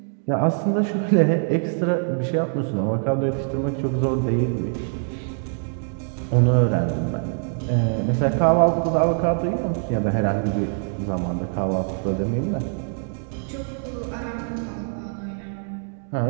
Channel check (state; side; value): silent; left; 57 dB below the other